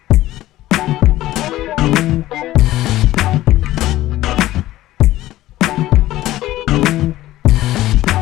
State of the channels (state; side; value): quieter; right; 15.5 dB